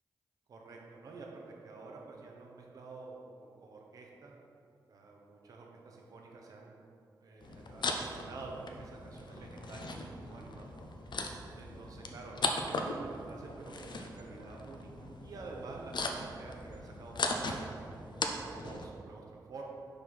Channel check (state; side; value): normal; both; correlation 0.41